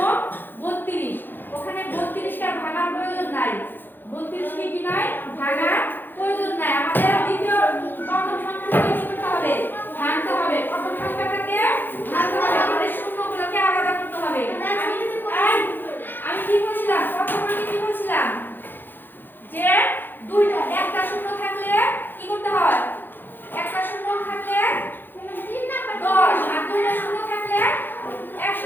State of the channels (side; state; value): right; late; 0.094 ms